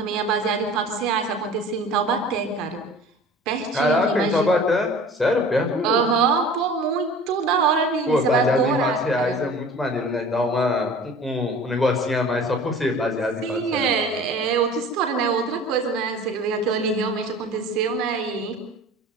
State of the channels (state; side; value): normal; both; correlation 0.43